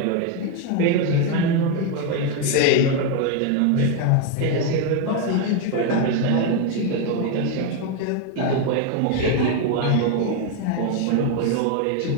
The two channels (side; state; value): both; different; correlation 0.01